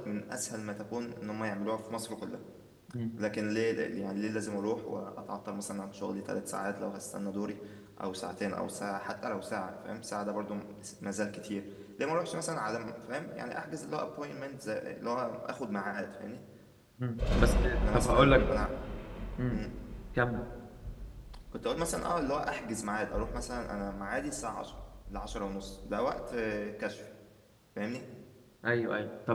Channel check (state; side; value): identical; both; correlation 1.00